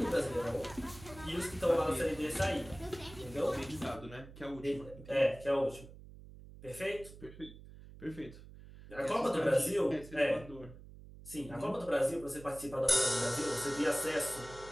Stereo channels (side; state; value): right; noise; hum, 17 dB below the sound